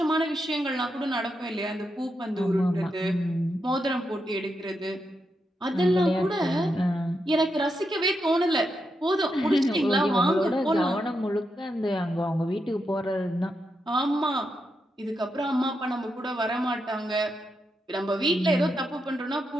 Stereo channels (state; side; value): normal; both; correlation 0.84